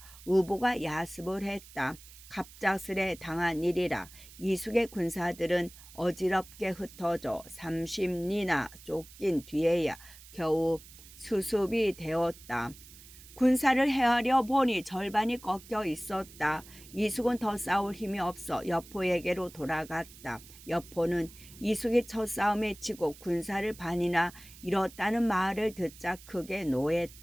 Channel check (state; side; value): noise; right; hiss, 19 dB below the sound